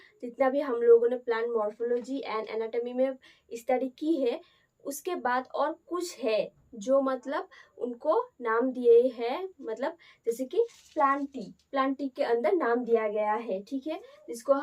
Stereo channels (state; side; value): identical; both; correlation 1.00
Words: जितना भी हम लोगों ने प्लांट मॉर्फोलॉजी एंड एनाटॉमी में स्टडी की है, उसके बाद और कुछ है जो मतलब उनको नाम दिए हैं, मतलब जैसे कि प्लांटी के अंदर नाम दिया गया है, ठीक है। जिसको